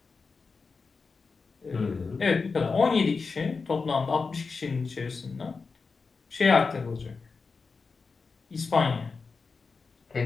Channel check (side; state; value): right; quieter; 4.6 dB